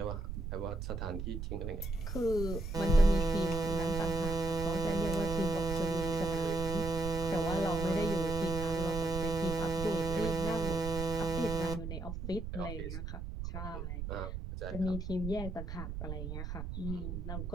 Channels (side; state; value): right; noise; rumble, 5 dB below the sound